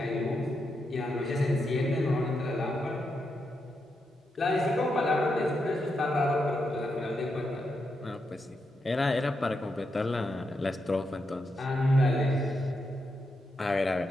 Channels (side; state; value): both; normal; correlation 0.84